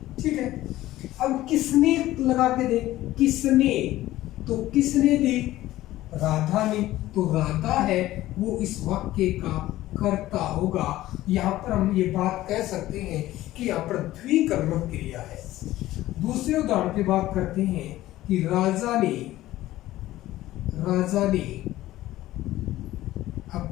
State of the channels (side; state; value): right; quieter; 15.6 dB